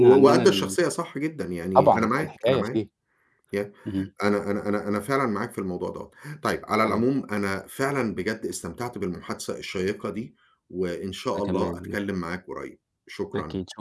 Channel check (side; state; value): both; identical; correlation 1.00